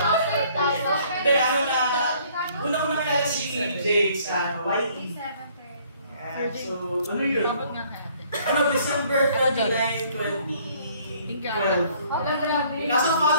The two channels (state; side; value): inverted; both; correlation -0.60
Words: Hindi, ano na, una ko nakilala si Jake sa YE. So, ano yun? Ano, December 29, 2012. Kaso